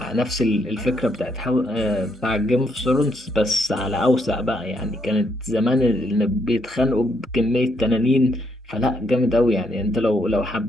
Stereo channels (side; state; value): both; normal; correlation 0.74